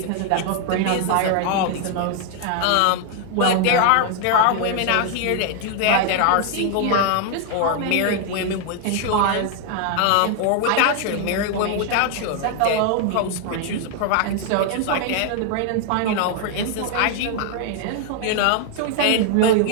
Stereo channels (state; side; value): different; both; correlation 0.00